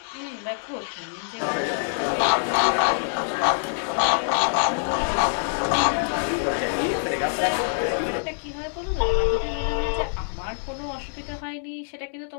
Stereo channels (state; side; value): silent; right; 62 dB below the other